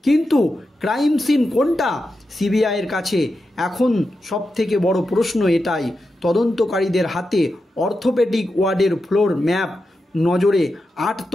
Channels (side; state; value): both; normal; correlation 0.89